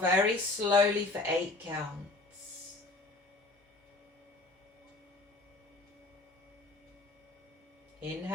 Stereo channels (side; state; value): right; quieter; 3.1 dB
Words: slowly for 8 counts.